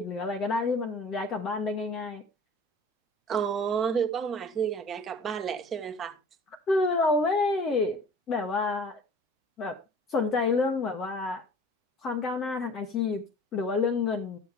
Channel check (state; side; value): normal; both; correlation 0.45